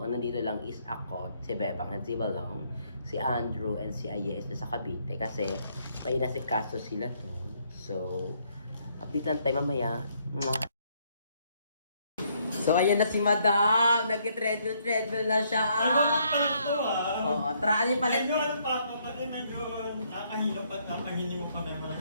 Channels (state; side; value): inverted; both; correlation -0.70